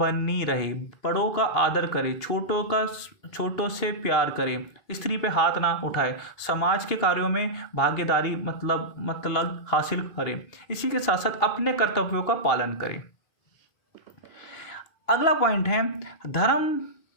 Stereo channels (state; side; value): late; right; 2.5 ms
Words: रहे, बड़ों का आदर करे, छोटों से प्यार करे, स्त्री पे हाथ ना उठाए, समाज के कार्यों में भागीदारी मतलब हासिल करे, इसी के साथ साथ अपने कर्तव्यों का पालन करे। अगला पॉइंट है धर्म